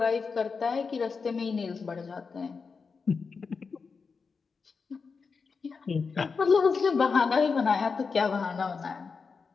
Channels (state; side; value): quieter; right; 5.1 dB